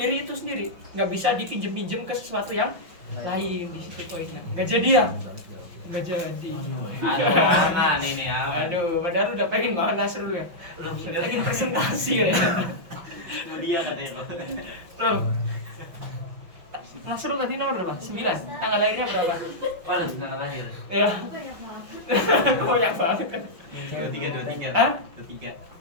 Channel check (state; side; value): late; left; 5.7 ms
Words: itu sendiri. Nggak bisa dipinjem-pinjem ke sesuatu yang lain. Di situ poinnya. Nggak jadi ya? Nggak jadi. Aman ini ya. Aduh, padahal udah pengen banget Nasrul ya. Pengen presentasi ya. Dia katanya. Loh. Nasrul tadi nomor berapa? 9. Tanggal lahirnya berapa? Oh, tanggal lahir. Ya. Banyak banget kan. 23. Hah? 23.